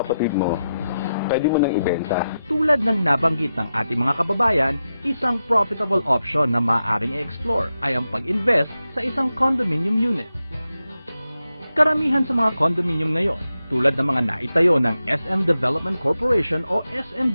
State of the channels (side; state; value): both; inverted; correlation -0.89